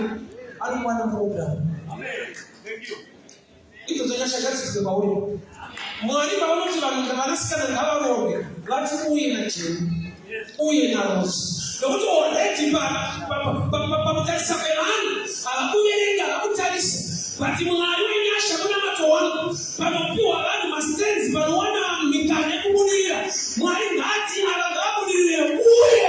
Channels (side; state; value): both; identical; correlation 1.00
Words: don't want a problem. Amen. Thank you. It was a Yasha that is the Bawi. Money Bawi to Manaska and Havarovi. Let's go in a chain. Uye na Rose. Don't go let him back. But that's a man. I'll put it in the Utalis. But you are doing a Shabana to one. But you are my stance, but one of me can my Nati Alagabuli,